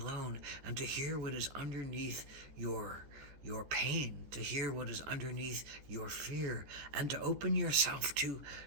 and to hear what is underneath your pain, to hear what is underneath your fear, and to open yourself to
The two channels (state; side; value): late; left; 14 ms